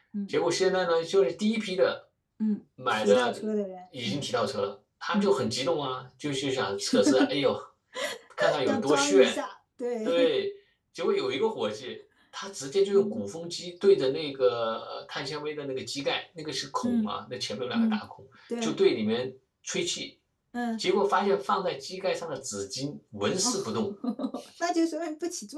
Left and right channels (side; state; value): both; identical; correlation 1.00